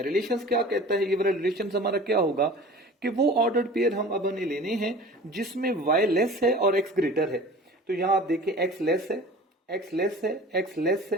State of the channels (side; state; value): both; normal; correlation 0.41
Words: रिलेशंस क्या कहता है, ये वाला रिलेशन हमारा क्या होगा कि वो ऑर्डर्ड पेयर हम अब हमें लेने हैं जिसमें y लेस है और x ग्रेटर है। तो यहां आप देखें x लेस है, x लेस है, x लेस